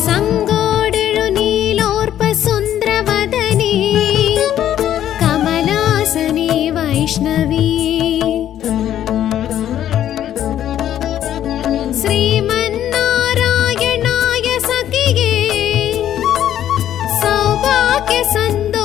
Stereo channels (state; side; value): quieter; right; 11.2 dB